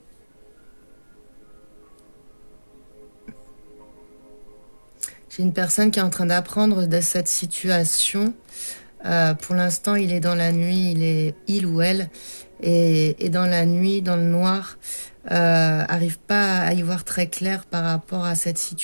J'ai une personne qui est en train d'apprendre de cette situation. Pour l'instant, il est dans la nuit, il ou elle est dans la nuit, dans le noir. Arrive pas à y voir très clair par rapport à cette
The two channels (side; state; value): both; inverted; correlation -1.00